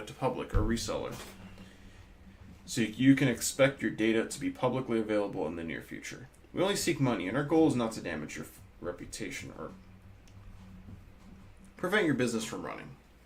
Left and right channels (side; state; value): both; identical; correlation 1.00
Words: to public or reseller. So you can expect your data to be publicly available in the near future. We only seek money, and our goal is not to damage your reputation or prevent your business from running.